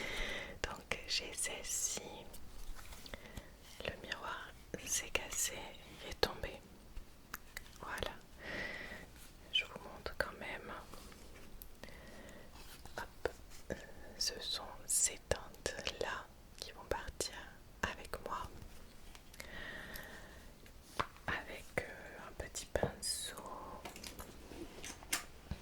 Donc, j'ai celle-ci. Le miroir s'est cassé, il est tombé. Voilà, je vous montre quand même. Hop, ce sont ces teintes là qui vont partir avec moi. Avec un petit pinceau.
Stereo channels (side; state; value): both; identical; correlation 1.00